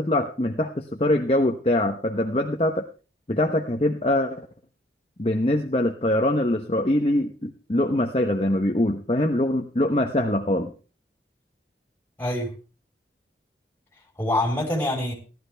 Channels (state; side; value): normal; both; correlation 0.60